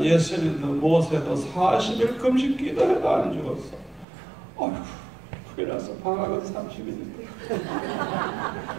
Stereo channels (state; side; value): drops out; left; at 4.0 s